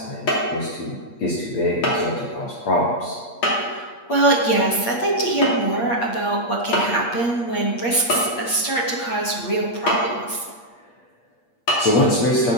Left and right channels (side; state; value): right; late; 8.5 ms